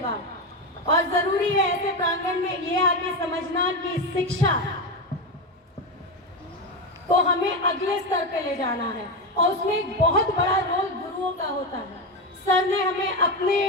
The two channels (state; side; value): normal; both; correlation 0.14